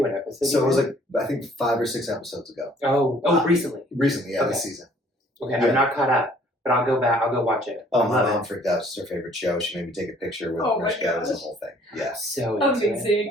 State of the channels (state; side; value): normal; both; correlation 0.58